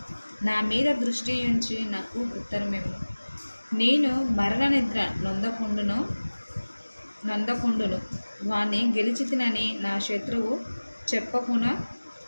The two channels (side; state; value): both; inverted; correlation -1.00